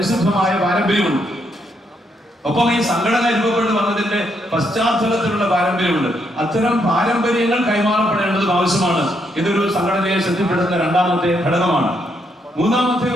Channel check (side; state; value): both; normal; correlation 0.76